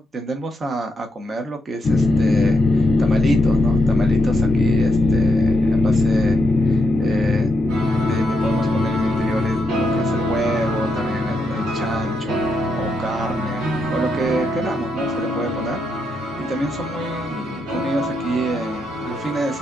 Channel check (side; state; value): both; normal; correlation 0.81